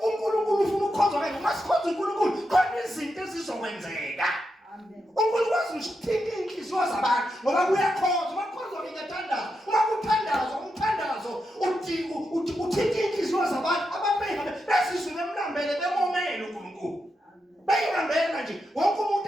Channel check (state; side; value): normal; both; correlation 0.86